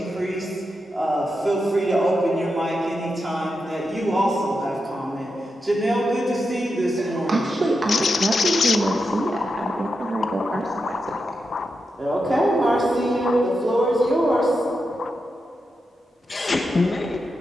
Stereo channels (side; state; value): both; normal; correlation 0.87